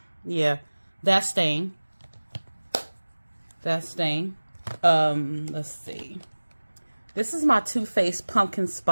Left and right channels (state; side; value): inverted; both; correlation -1.00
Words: Yeah, that's staying. That's staying. Let's see. This is my Too Faced Pumpkin